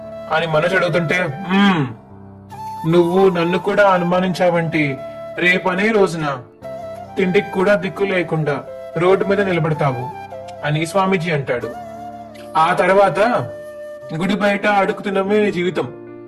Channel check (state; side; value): identical; both; correlation 1.00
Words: అని మనోజ్ అడుగుతుంటే, నువ్వు నన్ను కూడా అనుమానించావంటే రేపనే రోజున తిండికి కూడా దిక్కు లేకుండా రోడ్డు మీద నిలబడతావు అని స్వామీజీ అంటాడు. ఆ తర్వాత గుడి బయట అడుగుతున్నమే నీ జీవితం